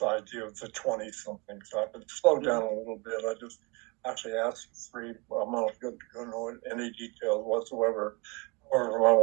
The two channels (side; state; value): left; quieter; 28.8 dB